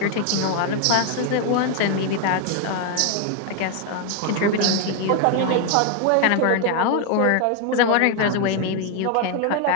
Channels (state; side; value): different; both; correlation 0.01